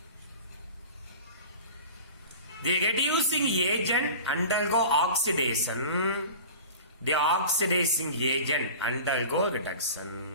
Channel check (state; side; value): inverted; both; correlation -0.36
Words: the reducing agent undergo oxidation, the oxidizing agent undergo